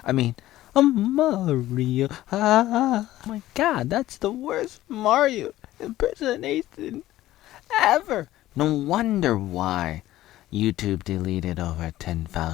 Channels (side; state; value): right; quieter; 15.0 dB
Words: I mean, I'm Mario. Ah. Oh my god, that's the worst Mario impersonation ever. No wonder why YouTube deleted over